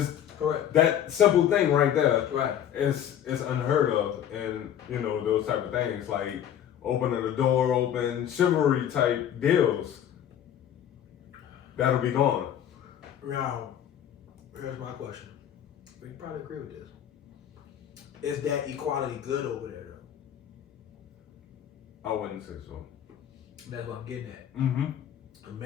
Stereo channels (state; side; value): quieter; right; 10.1 dB